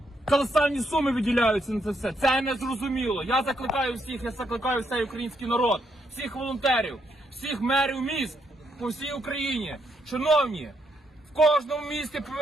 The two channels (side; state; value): both; normal; correlation 0.76